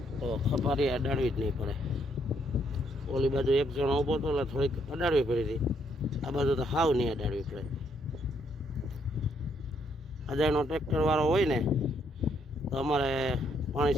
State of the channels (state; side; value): normal; both; correlation 0.72